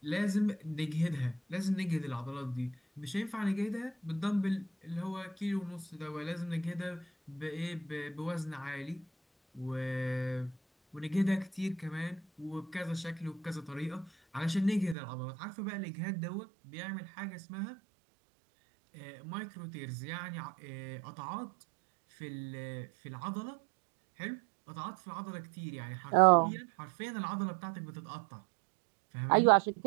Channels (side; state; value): left; drops out; at 15.0 s